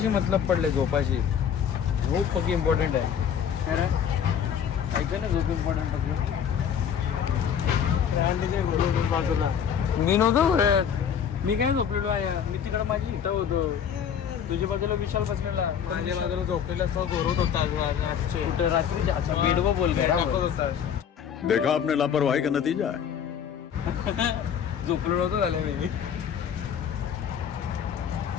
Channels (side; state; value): right; quieter; 8.2 dB